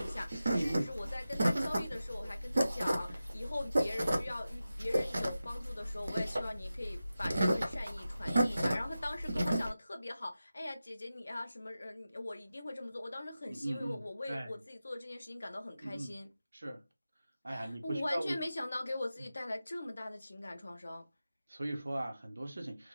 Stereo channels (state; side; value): inverted; both; correlation -0.94